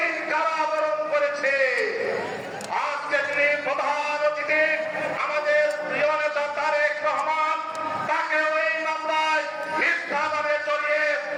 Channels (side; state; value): both; identical; correlation 1.00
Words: কারাবরণ করেছি। আজকে তিনি প্রধান অতিথি আমাদের প্রিয় নেতা তারেক রহমান, তাকেও এই মামলায় মিথ্যা নামে জড়িয়ে